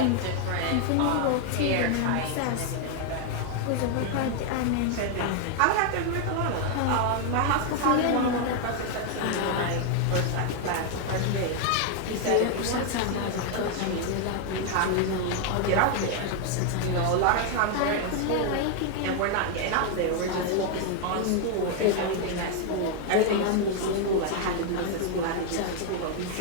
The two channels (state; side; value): different; both; correlation 0.00